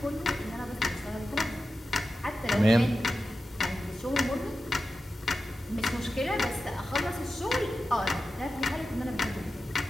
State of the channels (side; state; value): both; normal; correlation 0.92